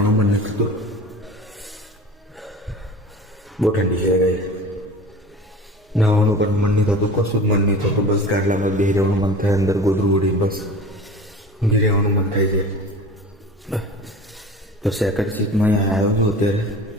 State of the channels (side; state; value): both; normal; correlation 0.38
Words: મન નથી થતું, બહુ ઠંડી છે ગાઈસ. નાવાનું પણ મન નહીં થતું, કશું જ મન નહીં થતું. બસ ગાડલામાં બેસી રહેવાનું મન થાય, અંદર ગોદરું ઉડી બસ ઊંઘી રહેવાનું મન થાય છે. તો સેકન્ડ સીટમાં આવ્યો છું અત્યારે